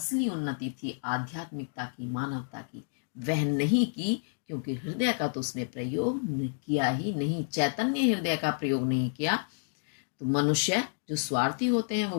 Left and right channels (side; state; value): right; silent; digital silence